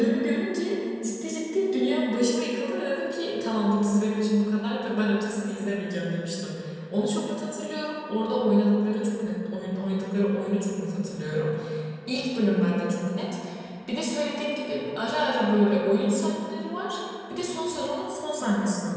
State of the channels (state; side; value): identical; both; correlation 1.00